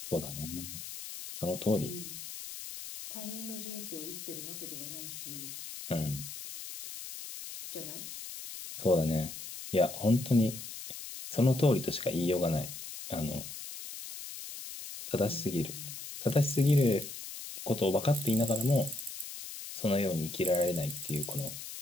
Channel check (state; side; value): noise; left; hiss, 10 dB below the sound